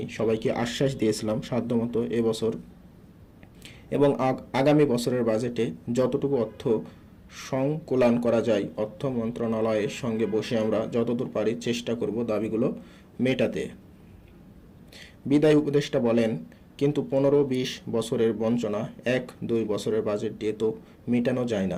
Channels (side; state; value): both; identical; correlation 1.00